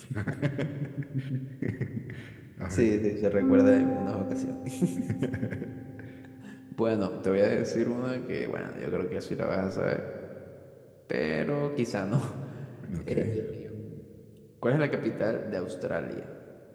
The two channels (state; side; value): identical; both; correlation 1.00